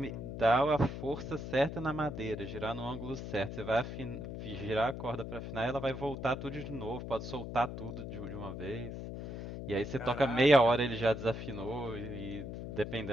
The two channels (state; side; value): noise; left; hum, 7 dB below the sound